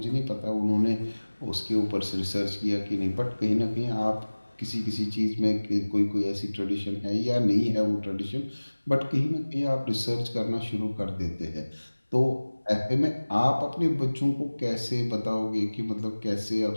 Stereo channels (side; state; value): both; inverted; correlation -1.00